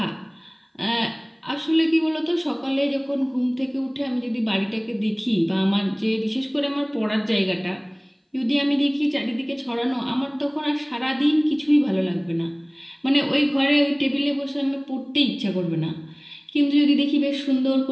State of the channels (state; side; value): identical; both; correlation 1.00